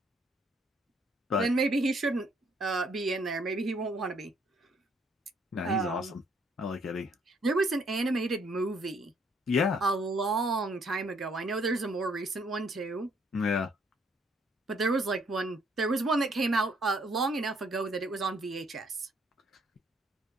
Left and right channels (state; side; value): normal; both; correlation 0.66